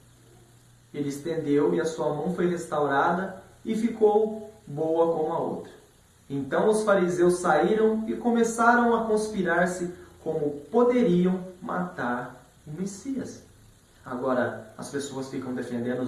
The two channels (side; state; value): both; identical; correlation 1.00